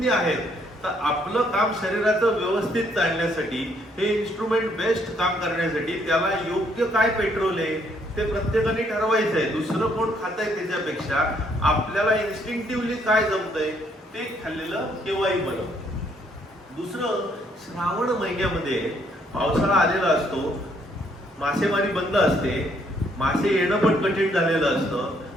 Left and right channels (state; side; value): normal; both; correlation 0.69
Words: आहेत तर आपलं काम शरीराचं व्यवस्थित चालण्यासाठी, हे इन्स्ट्रुमेंट बेस्ट काम करण्यासाठी त्याला योग्य काय पेट्रोल आहे ते प्रत्येकाने ठरवायचं आहे. दुसरं कोण खातंय त्याच्यापेक्षा आपल्याला इन्स्टिंक्टिव्हली काय जमतंय ते खाल्लेलं केव्हाही बरं. दुसरं, श्रावण महिन्यामध्ये पावसाळा आलेला असतो, मासेमारी बंद असते, मासे येणं पण कठीण झालेलं